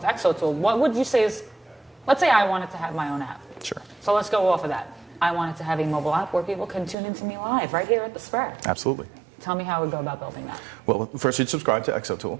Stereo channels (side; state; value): left; drops out; at 7.0 s